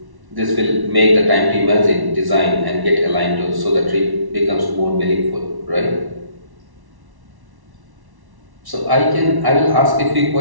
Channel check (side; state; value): left; late; 1.1 ms